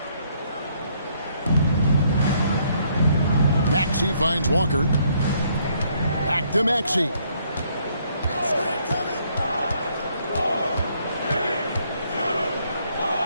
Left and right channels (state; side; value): inverted; both; correlation -0.69